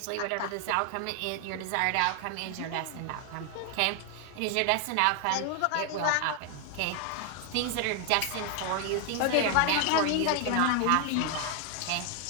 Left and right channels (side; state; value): both; different; correlation 0.00